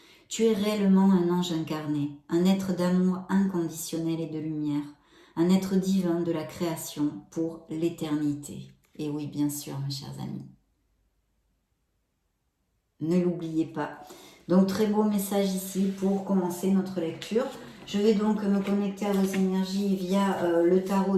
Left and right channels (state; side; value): identical; both; correlation 1.00